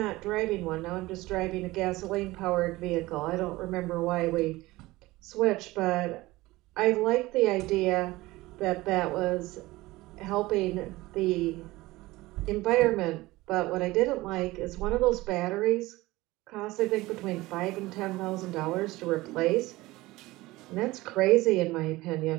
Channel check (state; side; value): quieter; left; 19.5 dB